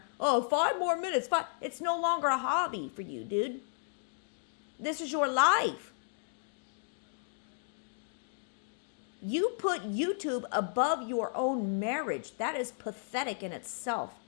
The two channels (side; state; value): right; silent; digital silence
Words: 5 more minutes. It's no longer a hobby for you, dude. This is your life. You put YouTube above your own marriage. That is pathetic in itself.